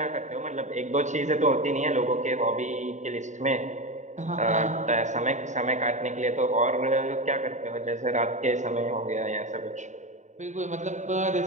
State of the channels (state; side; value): late; left; 0.35 ms